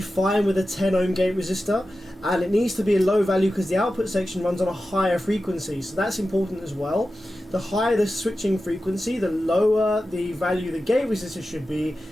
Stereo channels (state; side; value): normal; both; correlation 0.93